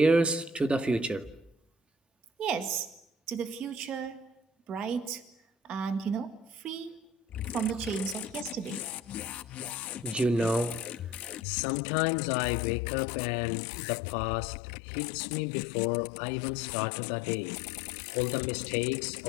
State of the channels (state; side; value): drops out; right; at 11.4 s